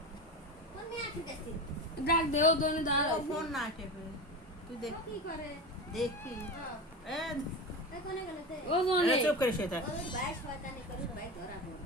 ডাক দেও দোনে দাঁড়া ফোন না টেপে তুই দেখ কি করে দেখি এ কোনে গেলতে ও দোনে চুপ করে শুয়ে থাক ওই ভাই শয়তানি করে ভাই ধরা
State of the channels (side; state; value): both; normal; correlation 0.24